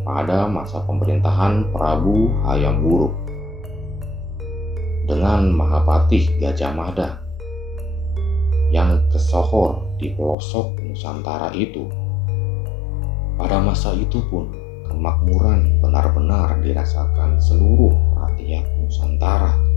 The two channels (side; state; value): right; drops out; at 10.4 s